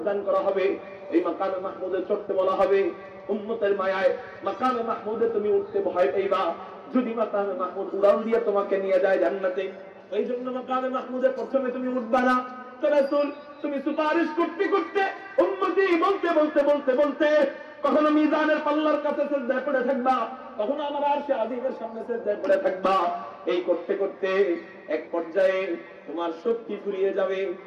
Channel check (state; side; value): identical; both; correlation 1.00